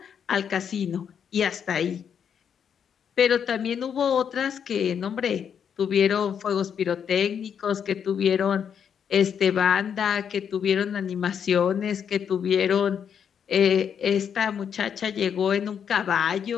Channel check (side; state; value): right; quieter; 7.8 dB